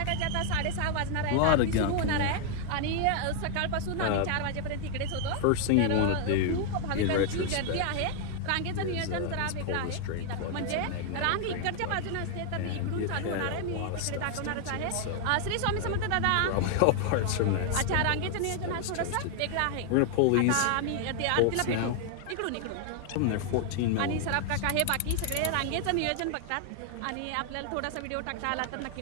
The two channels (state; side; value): different; both; correlation 0.00